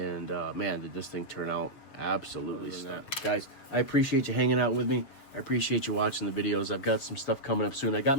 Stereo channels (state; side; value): late; right; 7.2 ms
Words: man, did this thing turn out absolutely stunning. Guys, I appreciate you hanging out with me. I appreciate you watching the videos. I've got some stuff coming up soon. I got